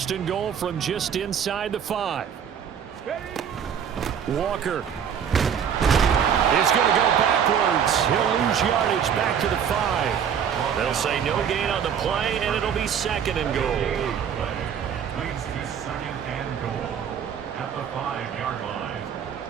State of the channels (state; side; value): quieter; left; 8.1 dB